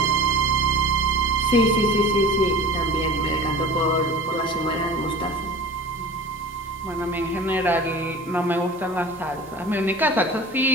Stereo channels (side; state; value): both; normal; correlation 0.38